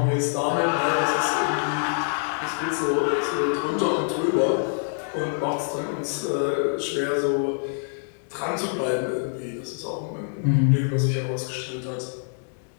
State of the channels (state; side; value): silent; right; 61 dB below the other